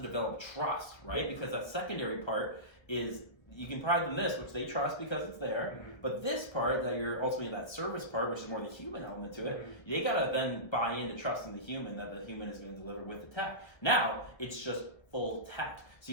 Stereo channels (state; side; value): late; right; 1.3 ms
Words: trust, right? Because that secondary part is you can provide them this, which they trust because it's there. Mm-hmm. But this part that you're ultimately that service part, which is more the human element to it, mm-hmm. they got to then buy into trusting the human that the human is going to deliver with the tech. Now it's just full tech. So